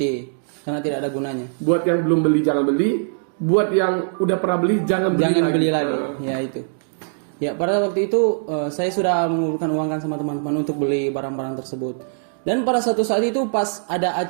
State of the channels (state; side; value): silent; left; digital silence